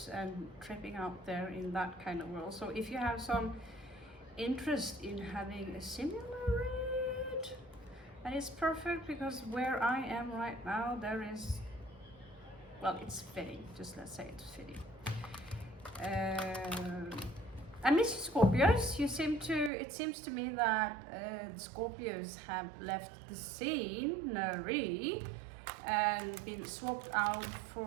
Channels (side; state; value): left; drops out; at 19.7 s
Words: and tripping out there in that kind of world. So if you have some interest in having a similar read, and it's perfect because where I am right now, there is, well, it's fitting, just let's say it's fitting. I miss you, Scorpios. It seems to me that the Scorpios have left the scenery and been swapped out